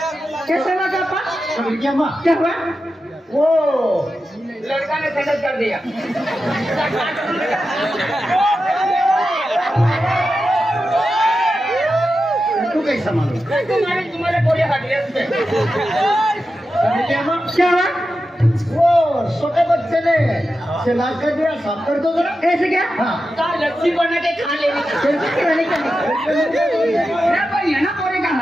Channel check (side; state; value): both; normal; correlation 0.91